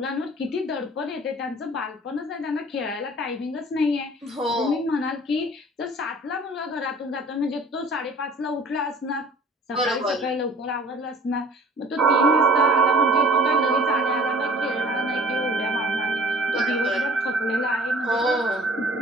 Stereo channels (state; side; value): normal; both; correlation 0.48